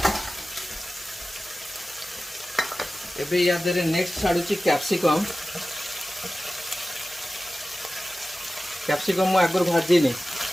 एबे या देरे नेक्स्ट छाड़ुची कैप्सिकम। कैप्सिकम मु आगर भाजी नहीं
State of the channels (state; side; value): normal; both; correlation 0.95